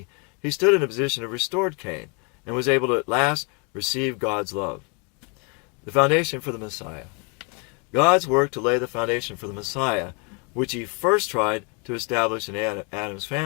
he stood in a position of restored Cain and was able to at last receive God's love. The foundation for the Messiah. God's work to lay the foundation for the Messiah, which he first tried to establish in Adam's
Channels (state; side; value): quieter; right; 34.4 dB